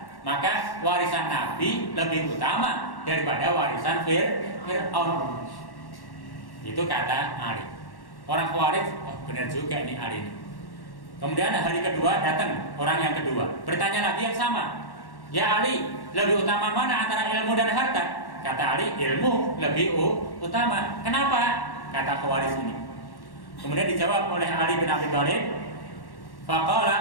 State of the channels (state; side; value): late; right; 1.1 ms